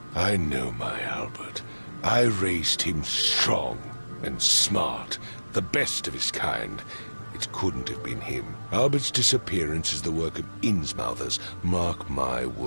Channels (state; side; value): inverted; both; correlation -1.00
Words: I know my Albert. I raised him strong and smart, the best of his kind. It couldn't have been him. Albert's disappearance is the work of Innsmouthers, mark my